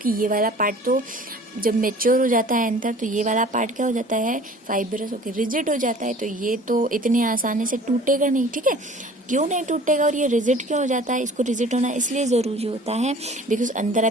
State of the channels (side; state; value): both; normal; correlation 0.47